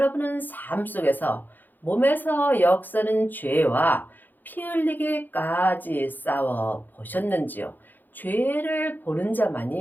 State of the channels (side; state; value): right; late; 0.087 ms